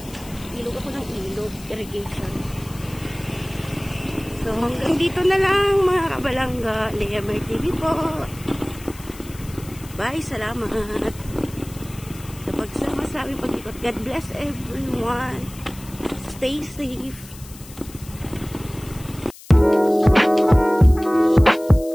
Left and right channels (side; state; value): left; noise; hiss, 19 dB below the sound